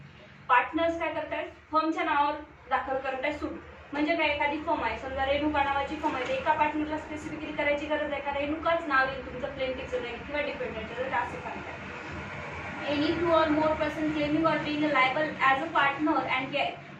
Partners काय करतायत, फर्मच्या नावावर दाखल करत आहे सूट. म्हणजे काय, एखादी फर्म आहे, समजा रेणुका नावाची फर्म आहे, एका पार्टनरला स्पेसिफिकली करायची गरज आहे का रेणुकाच नाव येईल तुमचं प्लेंटिफचं नाही किंवा डिपेंडंटचं, तर असं सांगताय. Any two or more person claiming or being liable as a partner and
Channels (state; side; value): identical; both; correlation 1.00